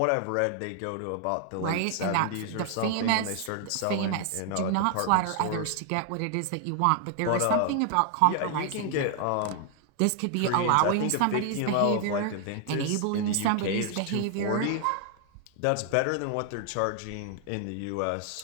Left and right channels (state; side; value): different; both; correlation 0.00